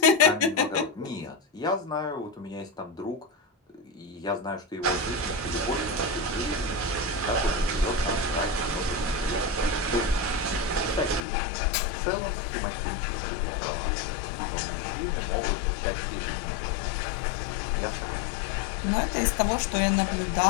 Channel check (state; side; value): drops out; right; at 11.2 s